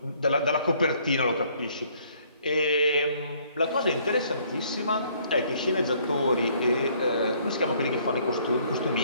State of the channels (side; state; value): both; inverted; correlation -0.63